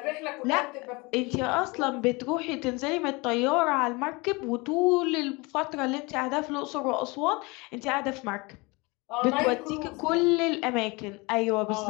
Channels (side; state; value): right; quieter; 25.9 dB